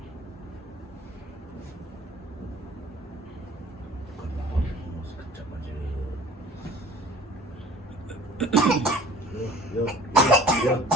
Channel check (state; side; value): normal; both; correlation 0.49